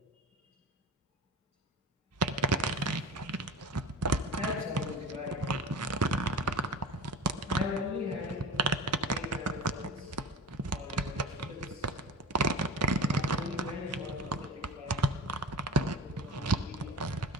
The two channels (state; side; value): normal; both; correlation 0.33